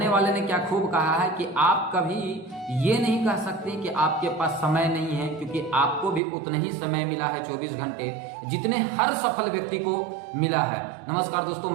वाले ने क्या खूब कहा है कि आप कभी ये नहीं कह सकते कि आपके पास समय नहीं है, क्योंकि आपको भी उतना ही समय मिला है 24 घंटे जितने हर सफल व्यक्ति को मिला है। नमस्कार दोस्तों,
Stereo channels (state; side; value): drops out; left; at 6.2 s